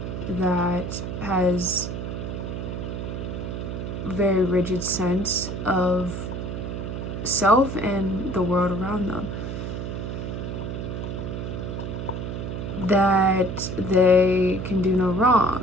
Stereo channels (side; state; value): right; noise; hum, 5 dB below the sound